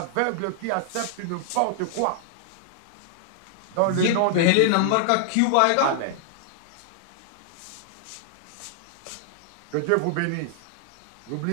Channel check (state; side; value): different; both; correlation -0.01